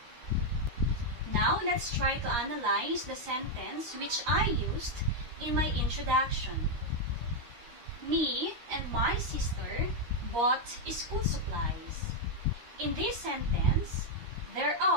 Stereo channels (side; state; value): left; late; 13 ms